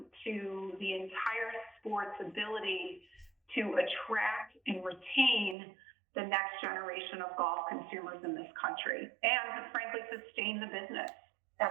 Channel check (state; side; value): drops out; left; at 5.6 s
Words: to the entire sport's ability to attract and retain the next generation of golf consumers in this country and to frankly sustain the business